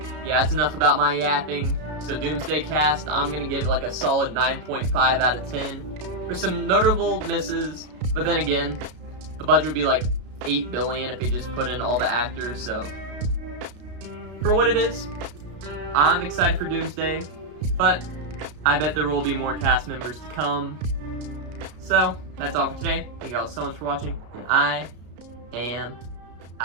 yeah, that's enough about my yapping. So Doomsday cast, I'm gonna give it like a solid 9.5 out of 10. There's some notable misses, but then again, the budget would be like $8 billion if they just put in all the actors. So for what it is, I'm excited for Doomsday, but I bet there will be more cast members to come. So that's all for today. Thank you all so much for watching, and I am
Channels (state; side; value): late; left; 33 ms